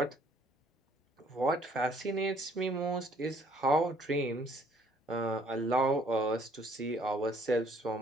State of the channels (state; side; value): normal; both; correlation 0.62